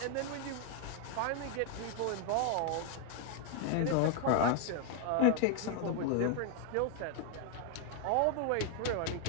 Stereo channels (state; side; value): different; both; correlation 0.00